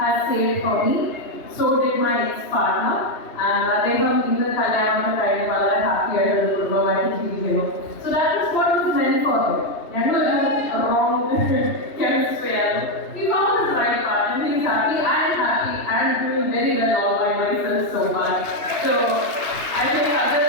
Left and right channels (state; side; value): late; right; 2.9 ms